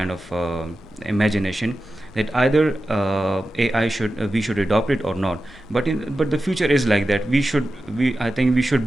of imagination, that either AI should we should adopt it or not. But the future is like that. We I think we should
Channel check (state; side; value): normal; both; correlation 0.92